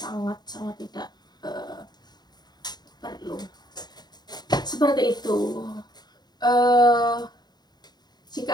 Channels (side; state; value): right; late; 0.20 ms